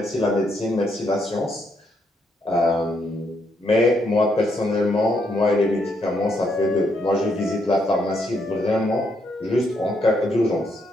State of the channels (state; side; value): normal; both; correlation 0.76